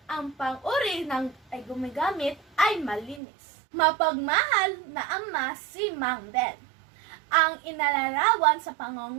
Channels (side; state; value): left; drops out; at 3.2 s